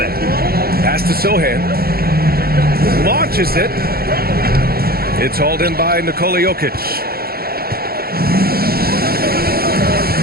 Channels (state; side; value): late; left; 0.44 ms